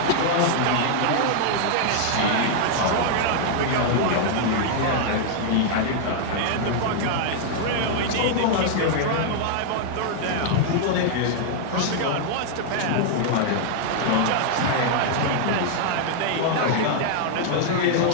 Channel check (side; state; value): both; different; correlation -0.01